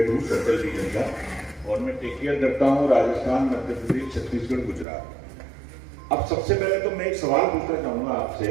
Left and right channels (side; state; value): left; drops out; at 4.9 s